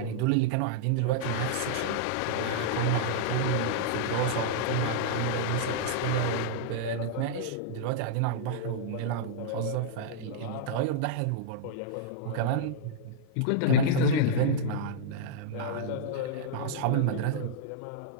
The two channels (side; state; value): both; different; correlation -0.01